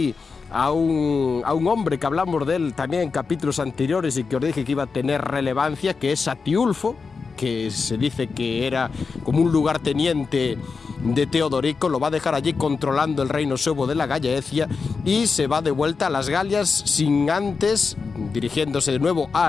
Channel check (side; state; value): right; quieter; 4.9 dB